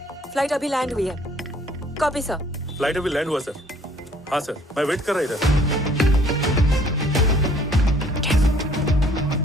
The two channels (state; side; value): normal; both; correlation 0.59